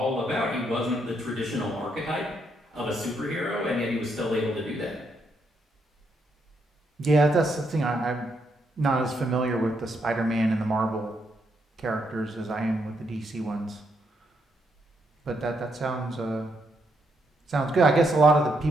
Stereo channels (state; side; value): normal; both; correlation 0.77